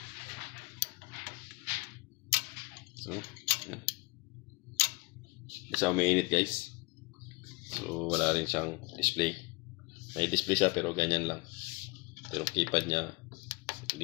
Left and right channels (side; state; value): right; quieter; 27.4 dB